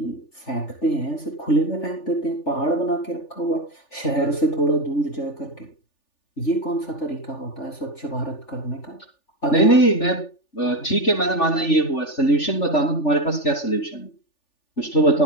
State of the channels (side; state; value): right; late; 3.4 ms